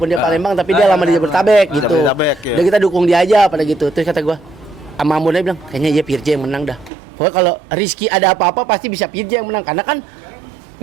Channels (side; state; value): left; drops out; at 6.9 s